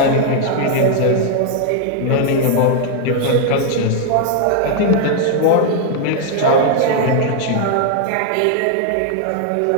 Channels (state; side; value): different; both; correlation 0.00